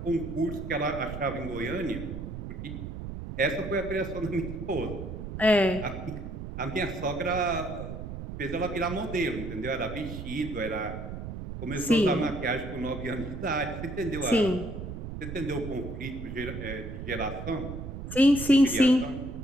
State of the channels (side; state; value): right; noise; rumble, 8 dB below the sound